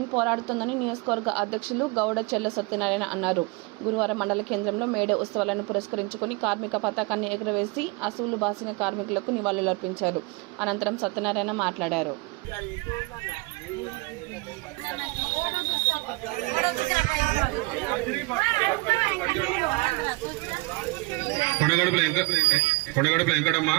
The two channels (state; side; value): quieter; left; 25.6 dB